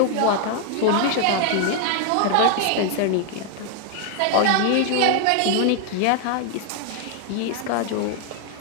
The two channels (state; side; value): different; both; correlation 0.00